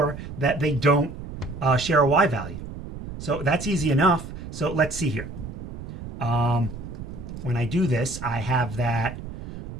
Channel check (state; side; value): noise; right; rumble, 10 dB below the sound